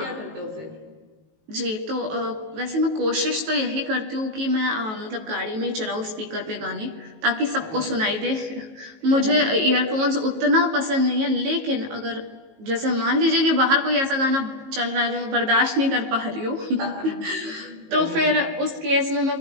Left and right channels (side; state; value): left; late; 19 ms